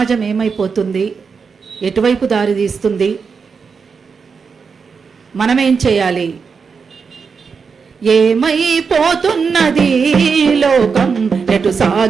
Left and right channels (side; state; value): left; quieter; 5.5 dB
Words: ఏమైపోతుంది, ఎటువైపు దారి తీస్తుంది, మనమేం చేయాలి, ఏమైపోతున్నది లోకం, ఎటు